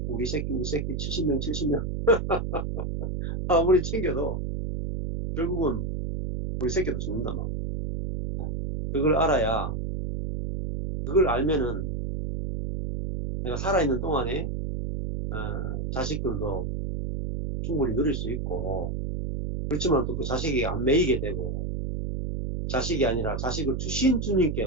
우리 새끼 70명 아무리 챙겨도 결국은 우리 새끼도 죽는단 말이야. 그걸 알아야, 그걸 알면은 내가 살아있는 동안에 자식들도 충분히 누릴 수 있고, 그렇지만 또 그 자식이 안 매이게 되고, 자식이 아니라 자식을 주신 주님께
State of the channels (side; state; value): right; noise; hum, 3 dB below the sound